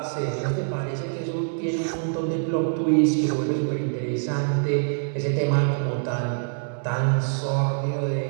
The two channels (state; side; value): silent; left; digital silence